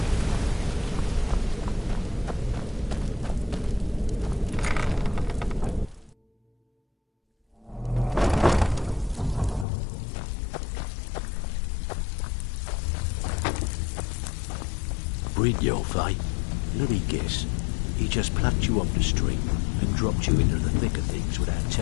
Brynjolf, eh? Let me guess. He just plucked you off the street and dropped you into the thick of things without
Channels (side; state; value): right; drops out; at 9.7 s